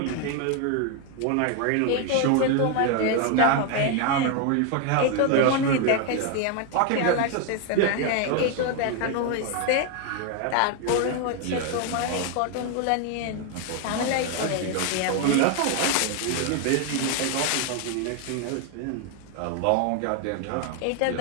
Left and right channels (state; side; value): different; both; correlation 0.01